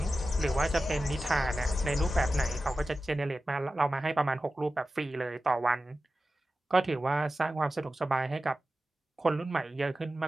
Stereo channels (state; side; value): normal; both; correlation 0.93